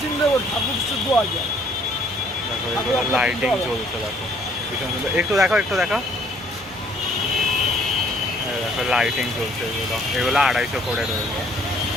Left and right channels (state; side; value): normal; both; correlation 0.61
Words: দেখো এগুলোর লাইটিং জ্বলছে, দেখো ভীষণ সুন্দর। একটু দেখো, একটু দেখো, দেখো লাইটিং জ্বলছে। এগুলো 250 করে রয়েছে,